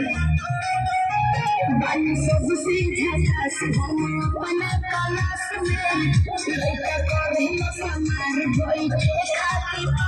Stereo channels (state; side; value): identical; both; correlation 1.00